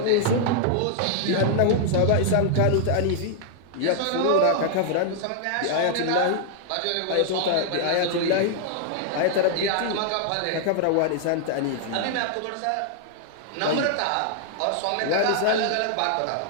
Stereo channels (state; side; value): different; both; correlation -0.01